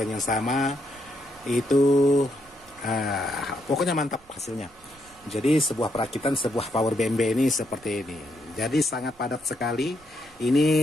yang sama. Itu pokoknya mantap hasilnya. Jadi sebuah perakitan sebuah power BMB ini seperti ini. Jadi sangat padat sekali. Ini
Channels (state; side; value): noise; right; rumble, 28 dB below the sound